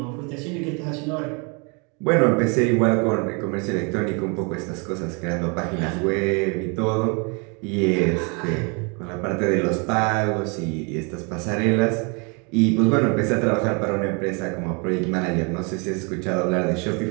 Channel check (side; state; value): left; quieter; 33.0 dB